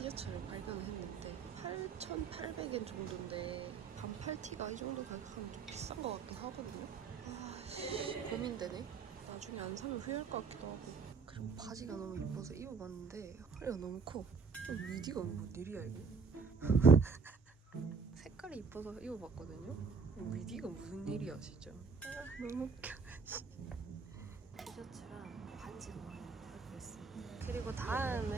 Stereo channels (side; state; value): left; quieter; 5.0 dB